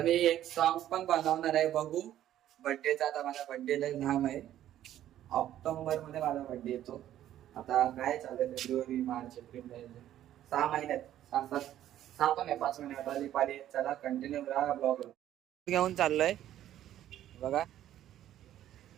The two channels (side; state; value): left; quieter; 12.1 dB